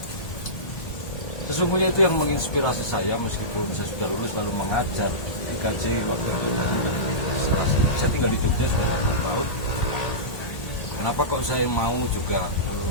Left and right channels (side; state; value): right; late; 1.4 ms